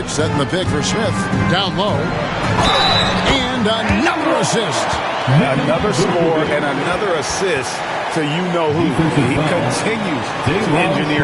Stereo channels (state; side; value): identical; both; correlation 1.00